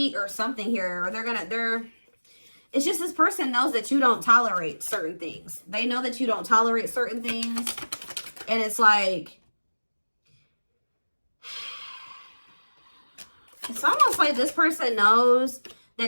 or something here, or it's just this person knows that you don't tolerate certain things. They know that you don't tolerate certain things. And it's like, it's almost like this person knows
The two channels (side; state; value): both; inverted; correlation -1.00